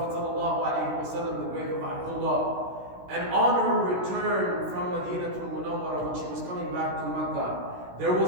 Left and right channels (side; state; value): left; late; 16 ms